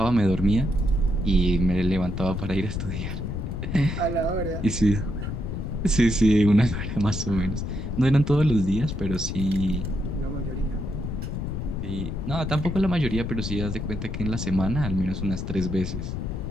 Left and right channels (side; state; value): left; noise; rumble, 4 dB below the sound